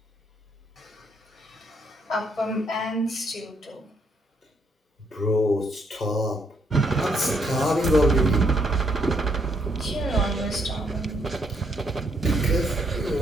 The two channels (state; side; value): normal; both; correlation 0.73